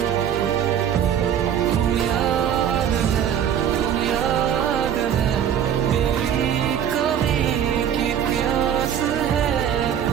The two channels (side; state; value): left; quieter; 9.2 dB